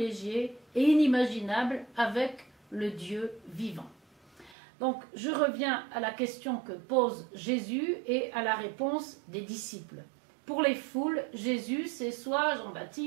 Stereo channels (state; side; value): drops out; left; at 4.5 s